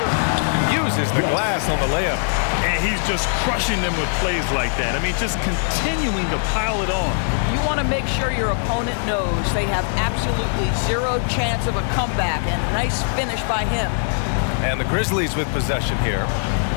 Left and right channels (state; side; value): silent; right; 65 dB below the other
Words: Uses the glass on the layup. And he's just crushing them with plays like that. I mean, just continuing to pile it on. You want to make sure your opponent knows they have absolutely 0 chance of a comeback, and nice finish by him. And the Grizzlies with possession here.